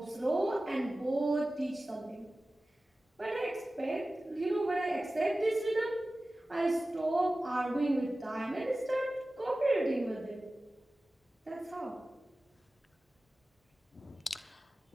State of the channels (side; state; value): both; normal; correlation 0.96